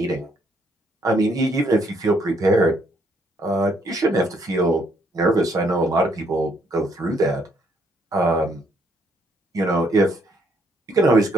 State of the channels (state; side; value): normal; both; correlation 0.70